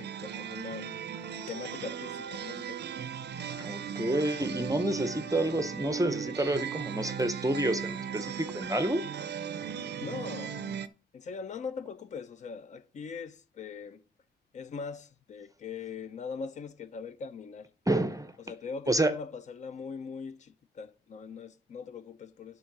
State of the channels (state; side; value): normal; both; correlation 0.65